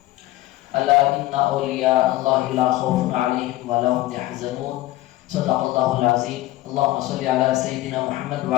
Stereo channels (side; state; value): right; quieter; 17.0 dB